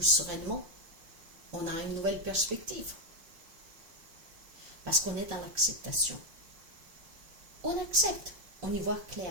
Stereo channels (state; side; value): late; left; 5.7 ms